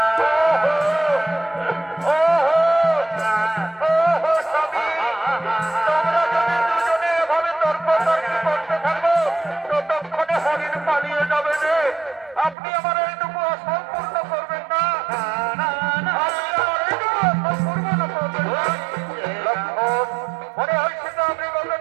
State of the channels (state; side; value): drops out; left; at 12.6 s